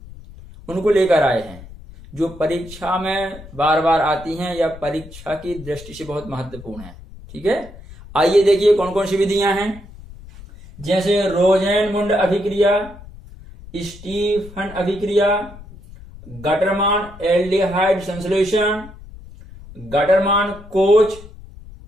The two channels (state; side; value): noise; left; rumble, 18 dB below the sound